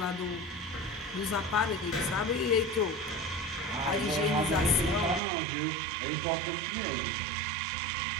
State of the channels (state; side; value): drops out; left; at 5.2 s